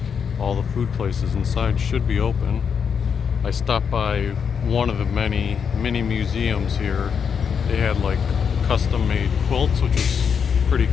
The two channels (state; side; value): quieter; right; 6.8 dB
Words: all the food places inside should be open. I stopped by one of the many mini museums here. They had like custom made quilts, which was pretty